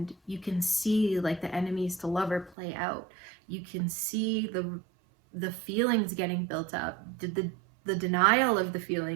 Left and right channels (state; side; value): drops out; left; at 2.6 s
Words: you can see like the enemies to lover play out. You can see the feelings getting built up, the denial of the